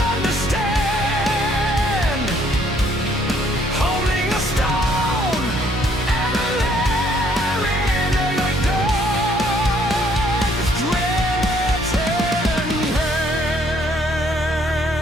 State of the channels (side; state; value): both; normal; correlation 0.65